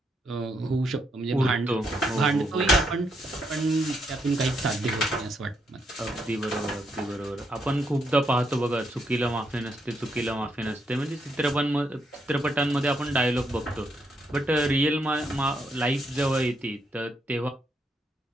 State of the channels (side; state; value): both; normal; correlation 0.78